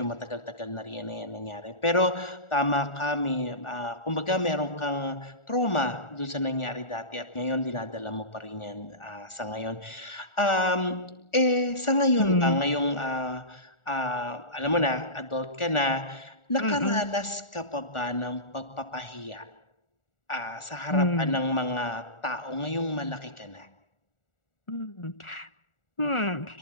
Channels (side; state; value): right; late; 1.4 ms